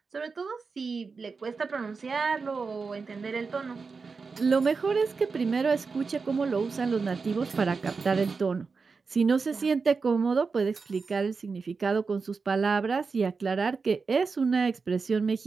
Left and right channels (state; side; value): quieter; left; 4.7 dB